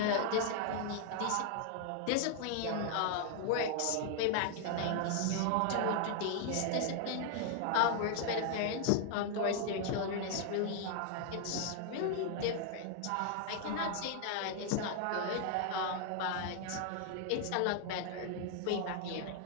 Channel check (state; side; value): different; both; correlation 0.00